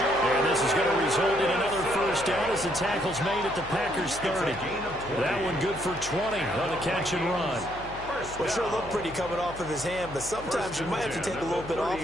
And this is going to result in another first down as the tackle's made at the Packers 30. That one good for 20 on the catch and run. Well, sure looked pretty coming off of his hand, but sometimes you might have to take a little bit off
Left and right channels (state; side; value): noise; left; hum, 15 dB below the sound